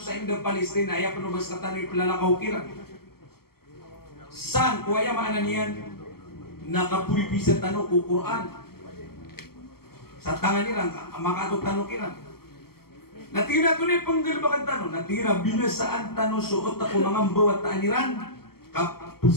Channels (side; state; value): right; late; 0.95 ms